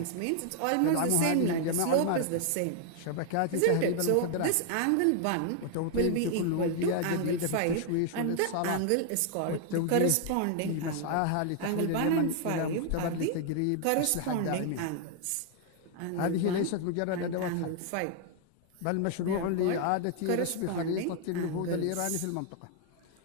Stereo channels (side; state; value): both; different; correlation 0.00